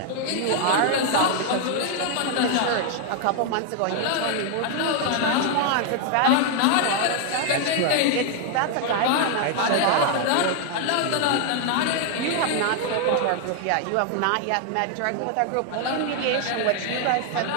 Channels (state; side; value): different; both; correlation 0.00